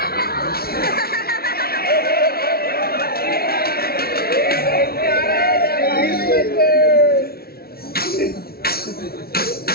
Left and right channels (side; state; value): right; late; 0.44 ms